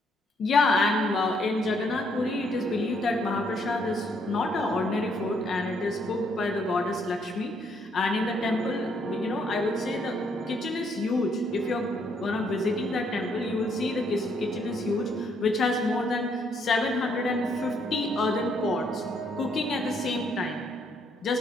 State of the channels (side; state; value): both; normal; correlation 0.71